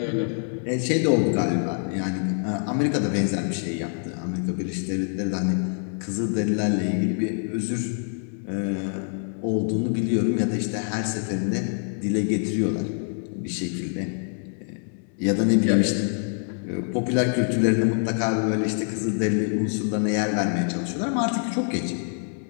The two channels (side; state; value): right; silent; 56 dB below the other